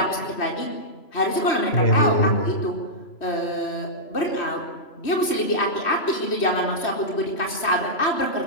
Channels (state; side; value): late; right; 3.0 ms